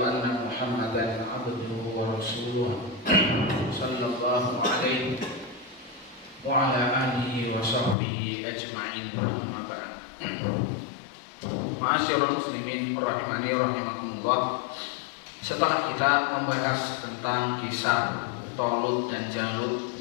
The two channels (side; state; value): right; drops out; at 8.0 s